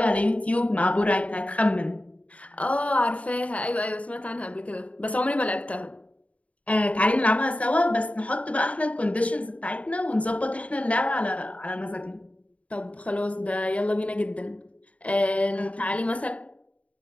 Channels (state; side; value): late; right; 0.066 ms